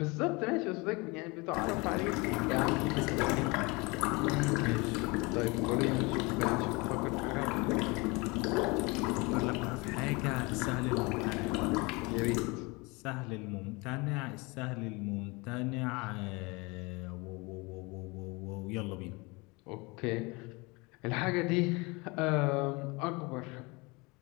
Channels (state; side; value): quieter; right; 26.3 dB